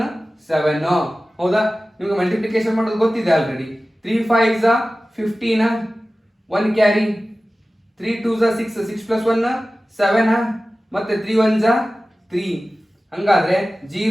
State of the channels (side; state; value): both; normal; correlation 0.96